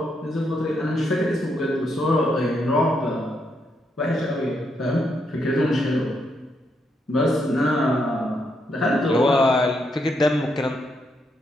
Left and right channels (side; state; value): both; normal; correlation 0.78